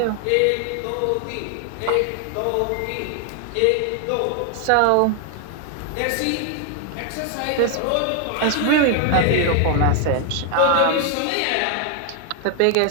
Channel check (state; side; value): different; both; correlation 0.00